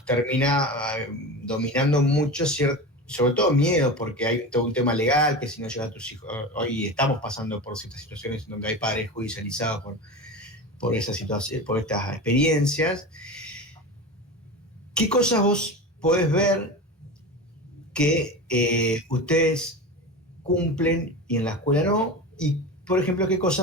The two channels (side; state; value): both; normal; correlation 0.28